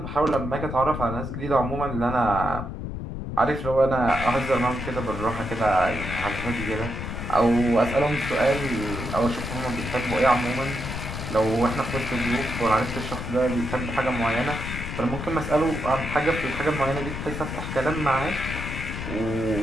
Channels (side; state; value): left; noise; rumble, 6 dB below the sound